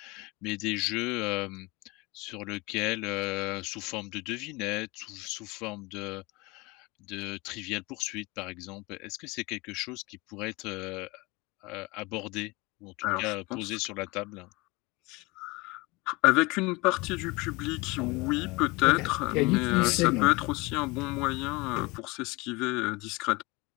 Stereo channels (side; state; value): right; quieter; 24.4 dB